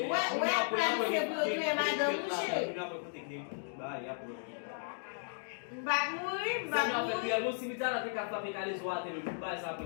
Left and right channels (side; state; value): right; silent; digital silence